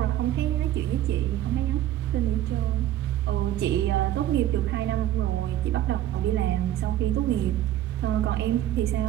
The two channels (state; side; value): quieter; left; 12.8 dB